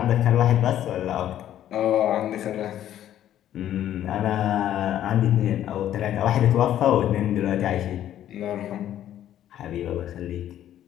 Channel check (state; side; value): quieter; right; 11.6 dB